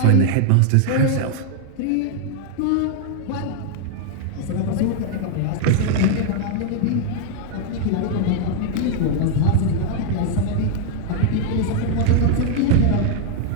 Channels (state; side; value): different; both; correlation 0.00